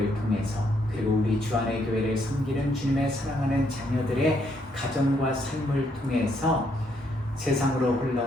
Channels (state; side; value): normal; both; correlation 0.73